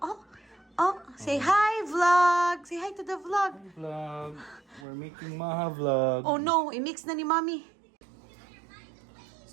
Oh, say hi, vlog. Say hi to the vlog. Vlog. We're making maha vlog. Oh no, i-mix na ni Mami.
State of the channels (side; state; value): left; drops out; at 4.9 s